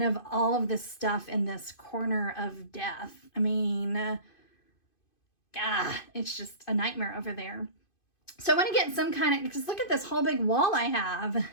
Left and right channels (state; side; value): late; right; 2.5 ms